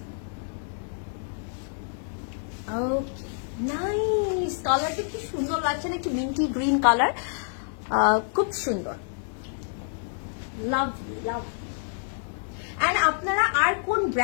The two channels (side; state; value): right; silent; 60 dB below the other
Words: ওকে, নাইস। কালারটা কি সুন্দর লাগছে না? একটু মিন্টি গ্রিন কালার, খুব সুন্দর, লাভলি লাভ। এন্ড আপনারা আর কোন